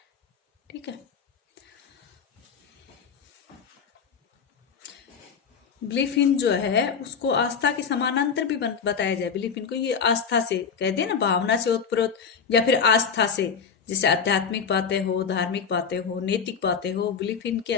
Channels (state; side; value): quieter; right; 6.3 dB